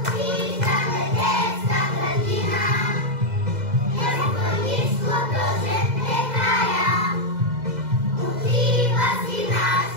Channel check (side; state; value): left; late; 2.0 ms